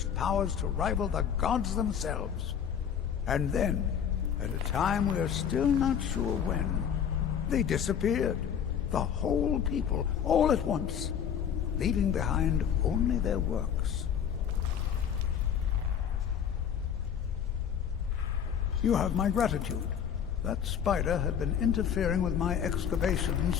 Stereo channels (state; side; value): quieter; right; 8.4 dB